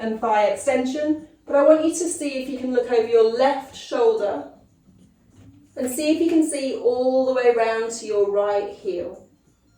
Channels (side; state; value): both; identical; correlation 1.00